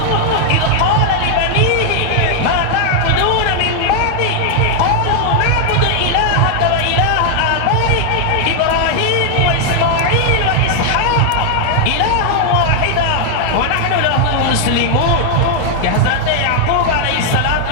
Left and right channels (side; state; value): both; different; correlation 0.00